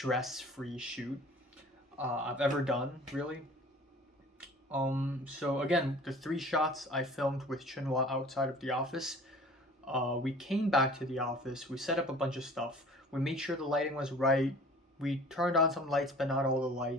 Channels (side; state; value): both; normal; correlation 0.46